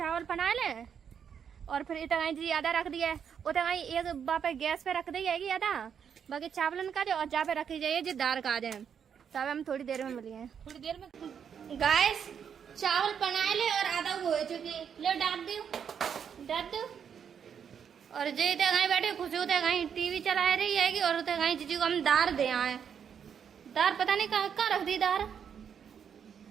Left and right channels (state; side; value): quieter; left; 7.7 dB